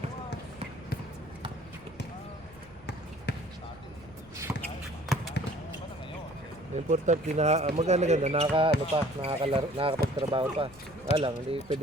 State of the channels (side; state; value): right; noise; rumble, 23 dB below the sound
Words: Importante na maganda nakakapagtrabaho pa. Lang, hindi